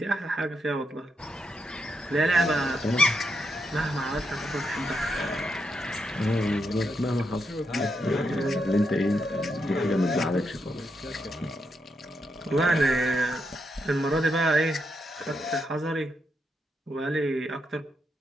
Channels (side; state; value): both; normal; correlation 0.81